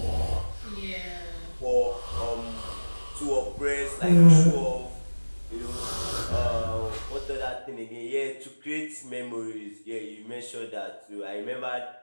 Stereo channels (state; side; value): inverted; both; correlation -1.00